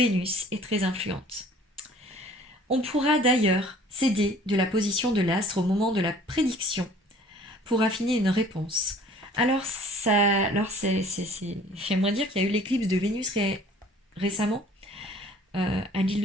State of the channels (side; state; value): both; normal; correlation 0.52